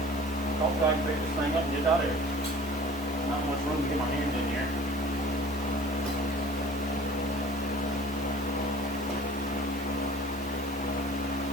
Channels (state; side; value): normal; both; correlation 0.46